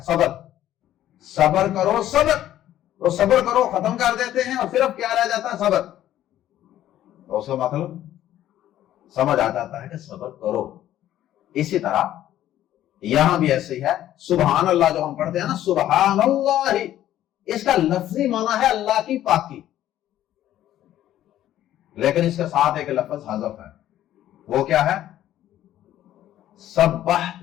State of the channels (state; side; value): quieter; right; 12.6 dB